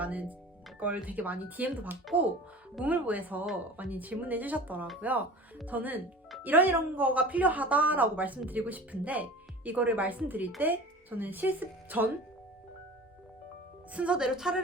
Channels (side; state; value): both; normal; correlation 0.39